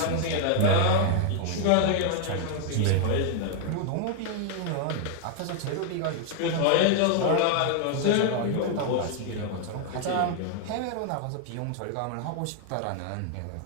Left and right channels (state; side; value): different; both; correlation 0.00